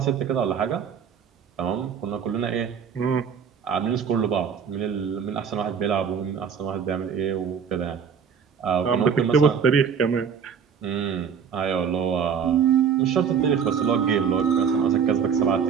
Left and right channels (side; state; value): left; quieter; 7.1 dB